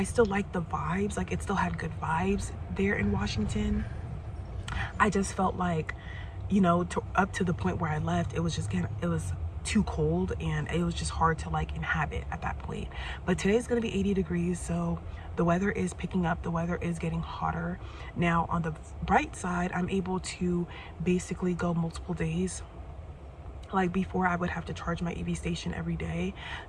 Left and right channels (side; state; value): both; identical; correlation 1.00